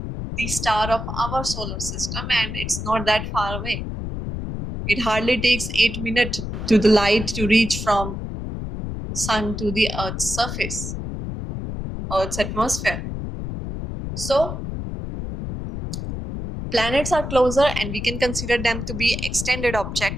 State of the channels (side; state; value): left; noise; rumble, 6 dB below the sound